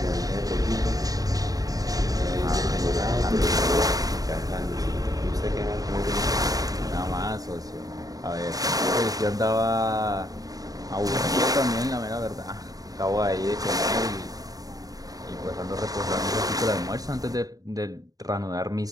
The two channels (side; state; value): left; late; 0.18 ms